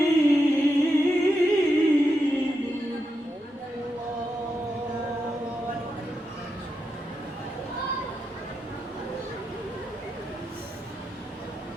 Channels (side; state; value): both; normal; correlation 0.86